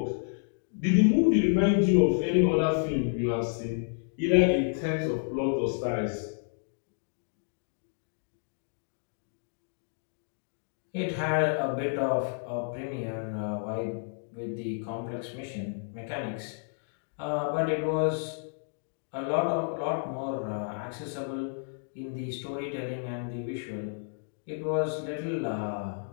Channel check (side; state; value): right; silent; digital silence